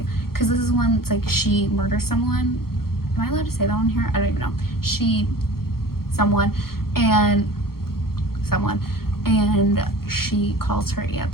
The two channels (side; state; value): right; late; 0.94 ms